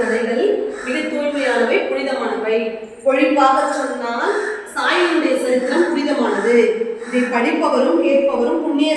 மிக தூய்மையானவை, புனிதமானவை. பொழிப்பாக சொன்னால் சாயினுடைய சரித்திரம் புனிதமானது. இதை படிப்பவரும் கேட்பவரும்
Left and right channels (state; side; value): identical; both; correlation 1.00